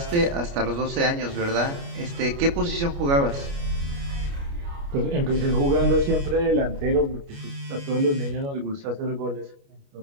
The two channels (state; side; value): late; left; 29 ms